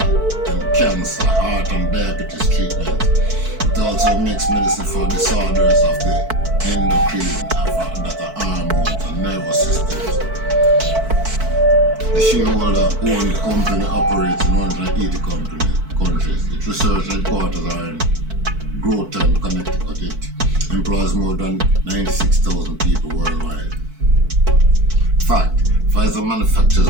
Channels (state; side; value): late; left; 4.5 ms